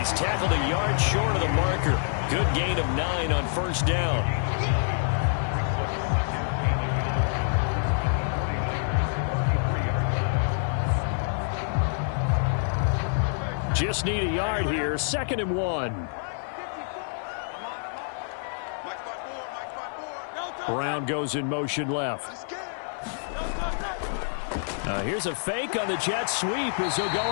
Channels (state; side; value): silent; right; 60 dB below the other